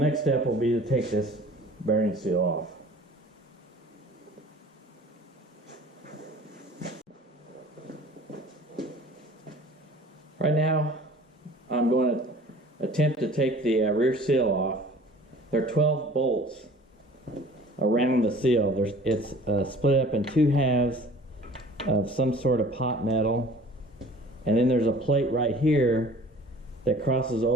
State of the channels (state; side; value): normal; both; correlation 0.48